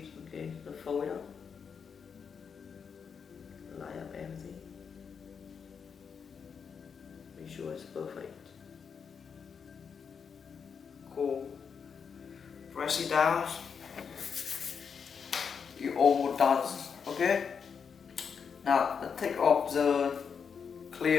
okay? So fold it up, line up everything, make sure it's perfect. Cool. Press it down. You almost done, okay? Now take off the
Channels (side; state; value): right; quieter; 6.4 dB